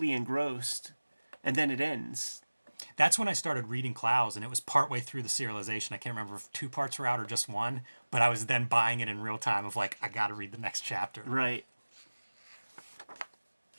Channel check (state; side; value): inverted; both; correlation -1.00